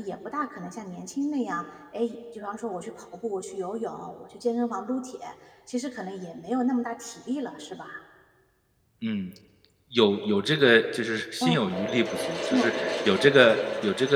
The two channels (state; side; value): identical; both; correlation 1.00